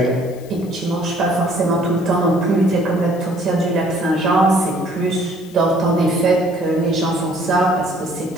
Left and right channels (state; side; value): noise; left; hiss, 24 dB below the sound